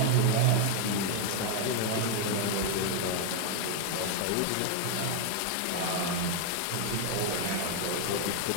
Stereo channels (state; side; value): different; both; correlation 0.00